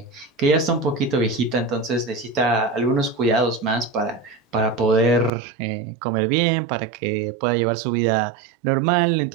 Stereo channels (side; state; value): left; drops out; at 5.3 s